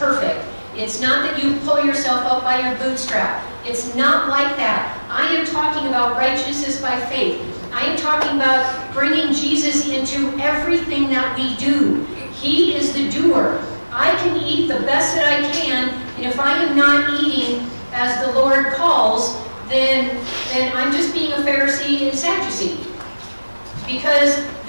It's not that you pull yourself up by your bootstrap. It's not like that. I am talking about righteousness by faith. I am talking about bringing Jesus into everything that we do. He is the doer. I can eat the best that I can, and if I am not eating as the Lord calls, then I'm just being a Pharisee and Sadducee. Because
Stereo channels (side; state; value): both; inverted; correlation -1.00